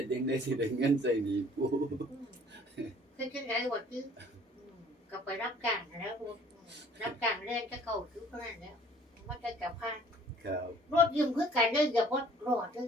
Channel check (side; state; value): both; normal; correlation 0.55